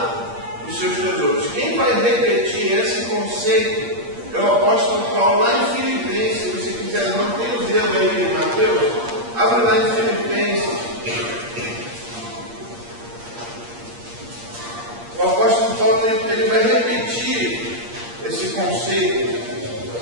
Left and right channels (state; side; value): late; left; 8.6 ms